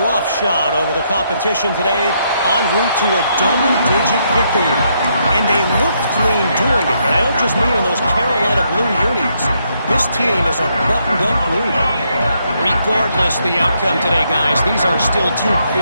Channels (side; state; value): both; inverted; correlation -0.75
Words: roughshod over the competition today en route to a double-digit victory. And they looked clean doing it. And I don't just mean in those Carolina blue unis. This team is a buttoned-up group. Regardless the outcome today, guys, these are still 2